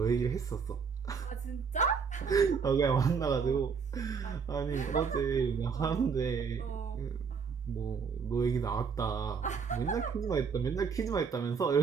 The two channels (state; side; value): quieter; left; 5.9 dB